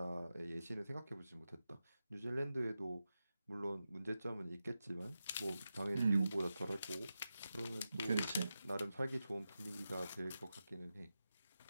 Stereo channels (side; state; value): both; inverted; correlation -0.91